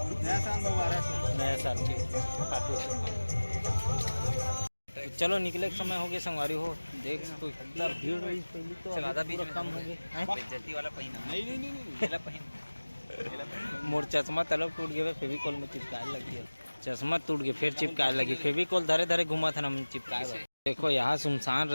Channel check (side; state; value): both; inverted; correlation -1.00